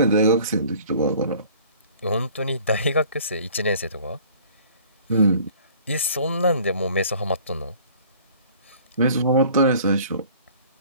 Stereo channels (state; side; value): inverted; both; correlation -0.52